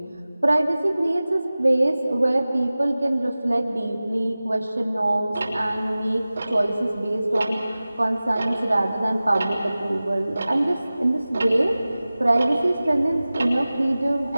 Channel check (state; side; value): inverted; both; correlation -0.97